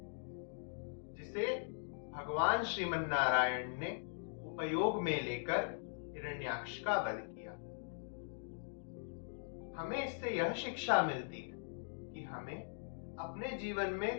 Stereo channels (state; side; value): silent; right; digital silence